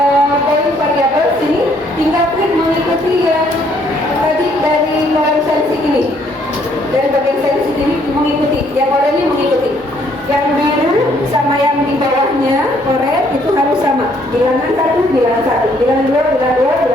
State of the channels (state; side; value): normal; both; correlation 0.66